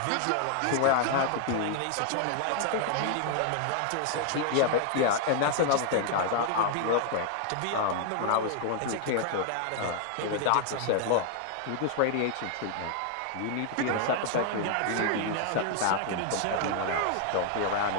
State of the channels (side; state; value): both; different; correlation 0.00